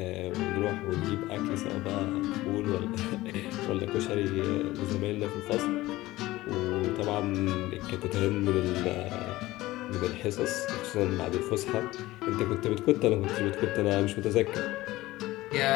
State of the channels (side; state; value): right; quieter; 17.9 dB